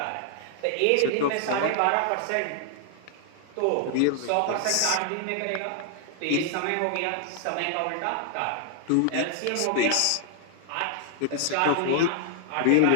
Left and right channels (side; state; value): both; different; correlation 0.00